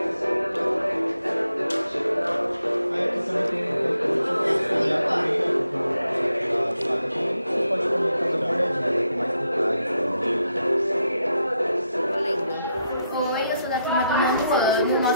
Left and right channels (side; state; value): both; inverted; correlation -0.81